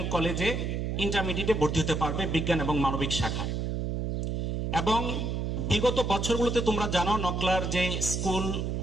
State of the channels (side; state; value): right; noise; hum, 1 dB below the sound